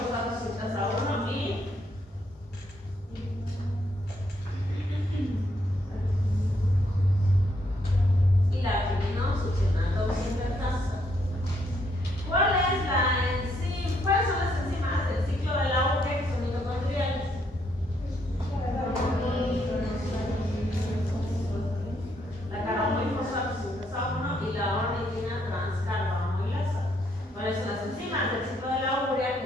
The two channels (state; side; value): normal; both; correlation 0.73